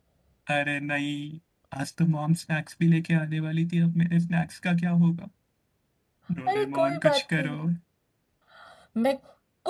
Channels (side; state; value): both; identical; correlation 1.00